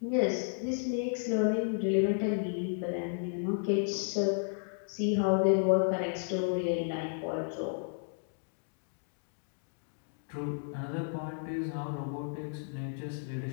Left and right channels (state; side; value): silent; right; digital silence